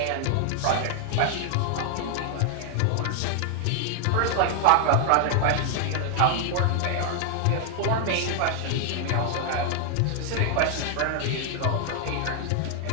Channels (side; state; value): both; different; correlation 0.00